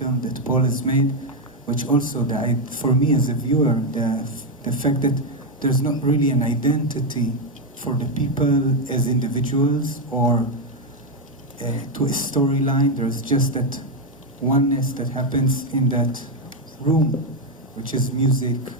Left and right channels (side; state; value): both; normal; correlation 0.05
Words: that Paul has made, which also, for me as a viewer, the fact that there's not really an identity for the people as individuals or to a storyline. There's just that oneness that happens in that room, which is music